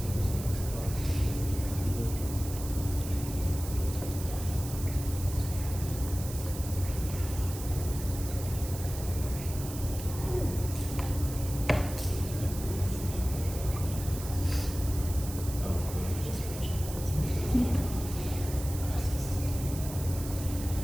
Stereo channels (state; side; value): noise; right; hiss, 11 dB below the sound